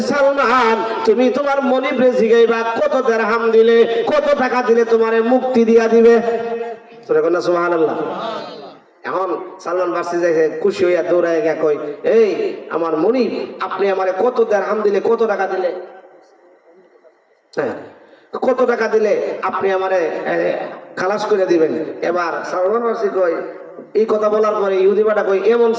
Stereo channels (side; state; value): both; identical; correlation 1.00